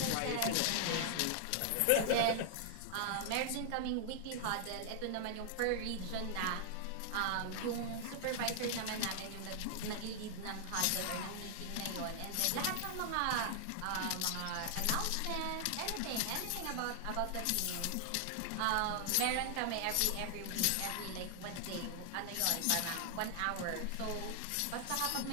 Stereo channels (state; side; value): different; both; correlation 0.00